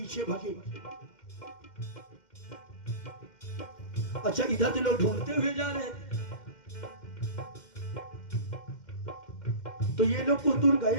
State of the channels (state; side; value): late; right; 2.1 ms